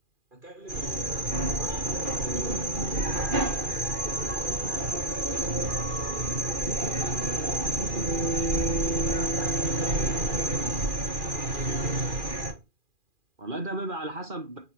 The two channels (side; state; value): left; late; 2.4 ms